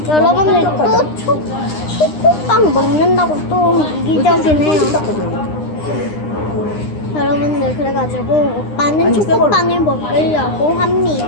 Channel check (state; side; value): late; right; 9.8 ms